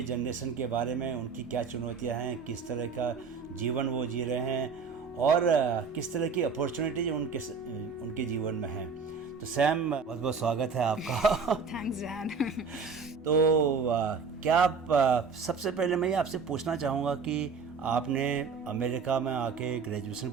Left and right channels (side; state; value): left; quieter; 5.3 dB